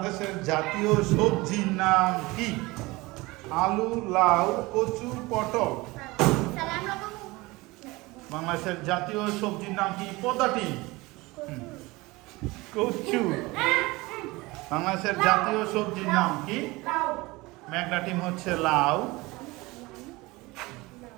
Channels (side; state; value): left; quieter; 22.1 dB